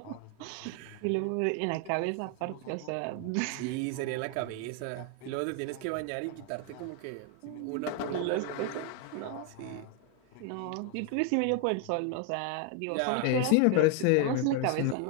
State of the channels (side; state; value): both; different; correlation 0.01